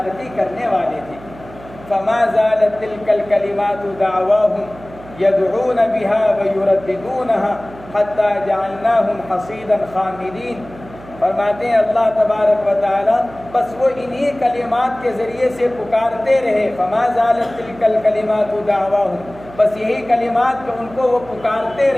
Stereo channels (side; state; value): right; noise; hum, 19 dB below the sound